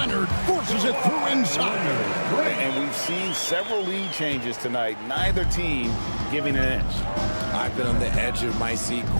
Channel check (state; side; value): inverted; both; correlation -1.00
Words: forces it through inside. And we've seen several lead changes tonight. Neither team giving an inch. I've been on the edge of my seat